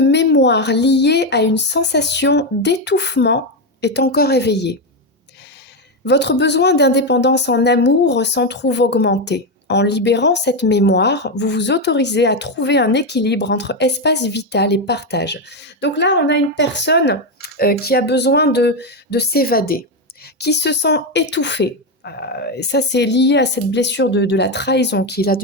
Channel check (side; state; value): both; normal; correlation 0.08